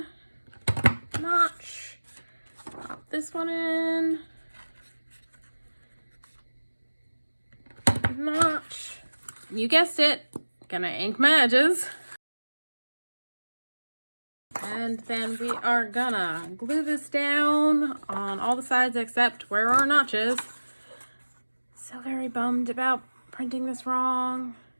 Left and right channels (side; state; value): both; inverted; correlation -1.00